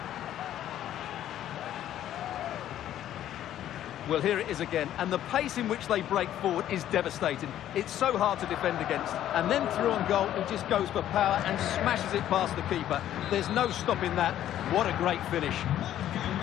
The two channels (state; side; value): quieter; right; 11.8 dB